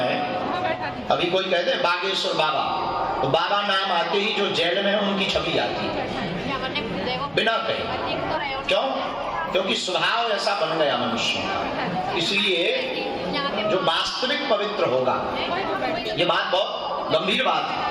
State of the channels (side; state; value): both; identical; correlation 1.00